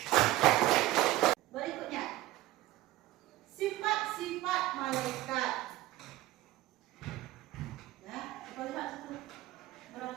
Berikutnya, sifat-sifat malaikat. Ya, kita lihat itu.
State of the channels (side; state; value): left; quieter; 16.8 dB